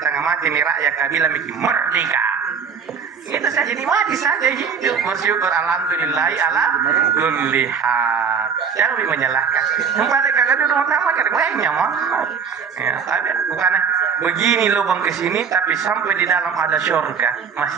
tengah mati nih rakyat kabila bikin merdeka. Itu saja nikmati saja hidup bersyukur alhamdulillah ala kulli hal. Jangan menyalahkan. Tempat kagak duduk utama kan banyak mah. Ya, tapi bukan begini lubang ke sini tapi sampai di dalam ada surga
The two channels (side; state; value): left; quieter; 6.3 dB